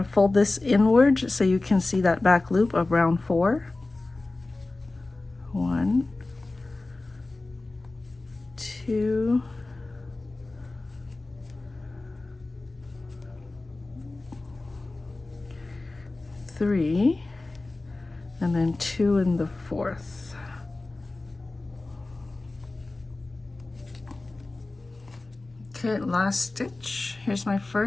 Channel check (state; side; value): quieter; right; 3.1 dB